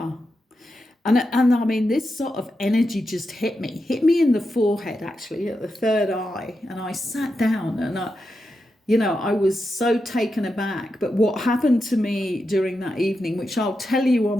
And I mean, this sort of energy just hit me in the forehead, actually, at the third eye. And I sat down and I was so taken aback. But what happened to me during that evening, which I'll tell you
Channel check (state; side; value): normal; both; correlation 0.87